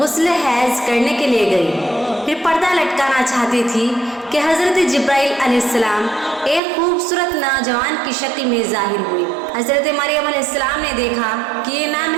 हैज़ करने के लिए गई। फिर पर्दा लटकाना चाहती थी कि हज़रत जिब्राइल अलैहिस्सलाम एक खूबसूरत नौजवान की शक्ल में ज़ाहिर हुई। हज़रत मरियम अलैहिस्सलाम ने देखा कि ये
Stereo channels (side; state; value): left; drops out; at 6.6 s